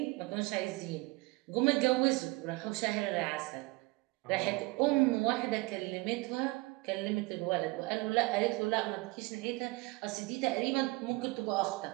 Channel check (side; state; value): left; quieter; 23.9 dB